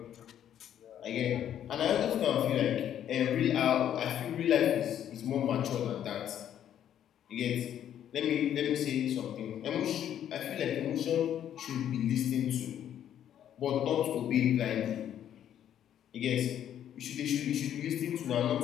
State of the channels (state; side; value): quieter; right; 10.3 dB